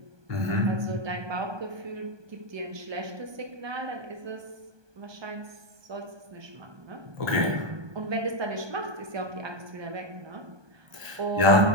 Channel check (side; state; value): left; late; 1.2 ms